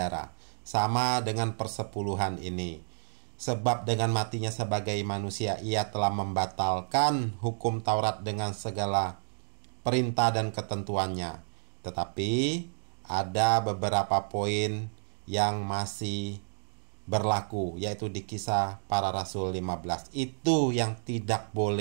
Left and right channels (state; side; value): silent; left; digital silence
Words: Sama dengan persepuluhan ini. Sebab dengan matinya sebagai manusia, ia telah membatalkan hukum Taurat dengan segala perintah dan ketentuannya. Tetapi ada beberapa poin yang masih berlaku, yaitu di Kisah Para Rasul 15. Itu yang tidak